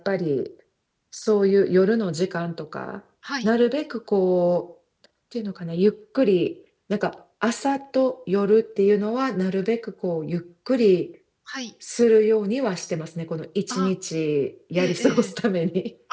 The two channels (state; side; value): identical; both; correlation 1.00